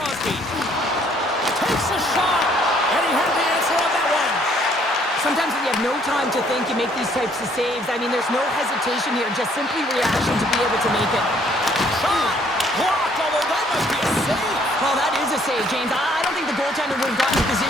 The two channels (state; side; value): normal; both; correlation 0.64